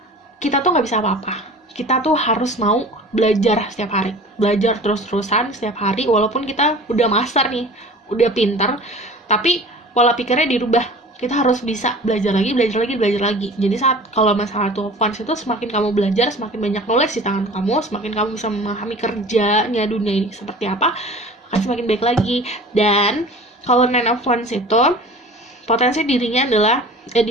kita tuh nggak bisa apa-apa. Kita tuh harus mau belajar setiap hari, belajar terus-terusan setiap hari, walaupun kita udah master nih, udah pintar, tapi pola pikirnya dirubah. Kita harus bisa belajar lagi. Jadi saat kalau masalah Two of Wands itu, semakin kamu belajar, semakin banyak knowledge di tangan kamu, semakin kamu bisa memahami kerjanya dunia ini seperti apa, akan semakin baik lagi. Dan kalau Nine of Wands itu potensi dirinya adalah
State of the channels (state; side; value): normal; both; correlation 0.42